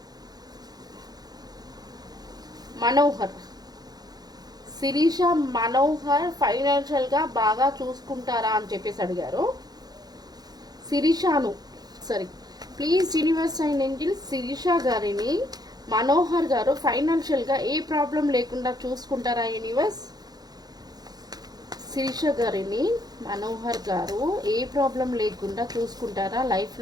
మనోహర్ ఫైనాన్షియల్గా బాగా చూసుకుంటారా అని చెప్పేసి అడిగారు. Please universe and angel Shirisha గారిని మనోహర్ గారు ఫైనాన్షియల్గా ఏ ప్రాబ్లం లేకుండా చూసుకుంటారా యూనివర్స్? శిరీష గారిని మనోహర్ గారు ఏ ప్రాబ్లం లేకుండా చూసుకుంటారా లైఫ్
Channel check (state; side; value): late; left; 0.19 ms